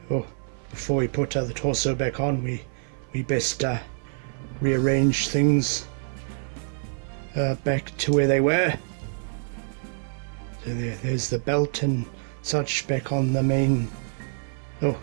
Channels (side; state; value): left; silent; 56 dB below the other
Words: Oh, before we put the torso back on, we best rearrange things back to where they were. So there's the belt and such back on the main. Oh,